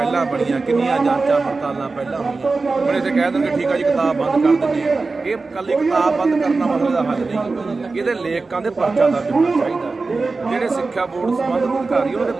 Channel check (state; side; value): quieter; left; 3.9 dB